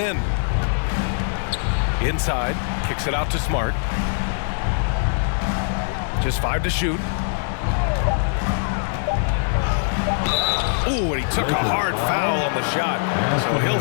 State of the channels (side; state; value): right; silent; 64 dB below the other